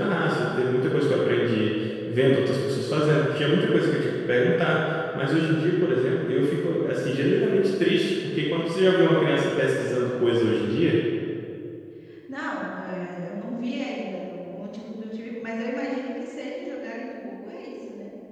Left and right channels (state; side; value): identical; both; correlation 1.00